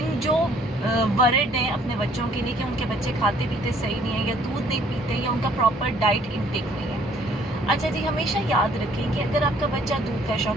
जो वरिड हैं अपने बच्चों के लिए कि उनके बच्चे खाते पीते सही नहीं है, या दूध नहीं पीते, या उनका प्रॉपर डाइट इनटेक नहीं है। अच्छा जी, हमेशा याद रखें कि अगर आपका बच्चा दूध का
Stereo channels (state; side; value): normal; both; correlation 0.60